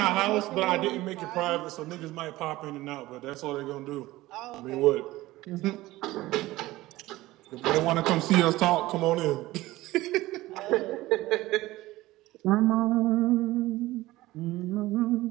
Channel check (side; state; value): left; quieter; 17.8 dB